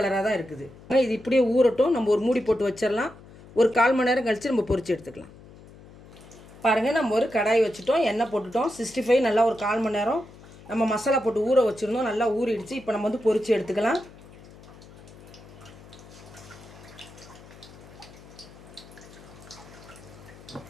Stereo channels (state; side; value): noise; left; hum, 20 dB below the sound